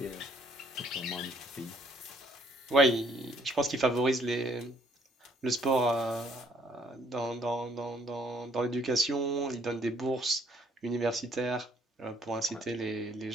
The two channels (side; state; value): both; normal; correlation 0.65